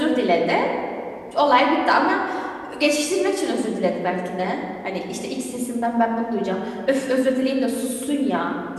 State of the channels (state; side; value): identical; both; correlation 1.00